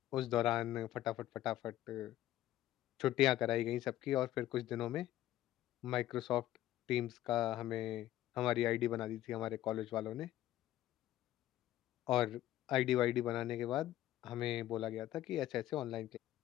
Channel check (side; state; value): right; quieter; 13.8 dB